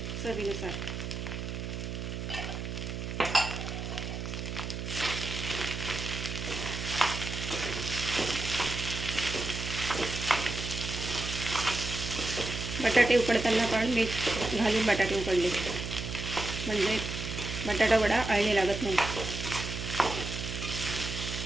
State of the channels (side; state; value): right; noise; hum, 5 dB below the sound